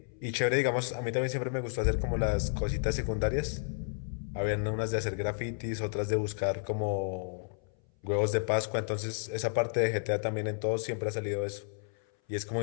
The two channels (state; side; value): silent; right; 57 dB below the other